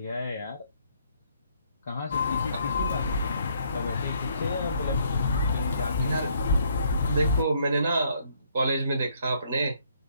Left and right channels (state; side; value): inverted; both; correlation -0.68